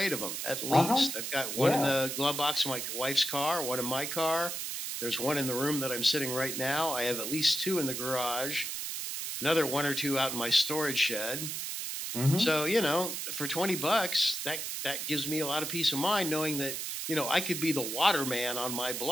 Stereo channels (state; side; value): noise; right; hiss, 4 dB below the sound